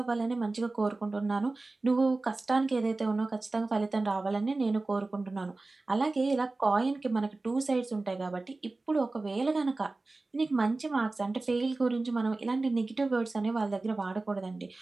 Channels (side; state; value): left; quieter; 3.3 dB